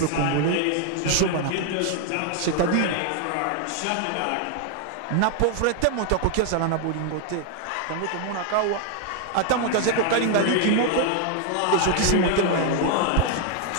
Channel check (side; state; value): both; different; correlation 0.00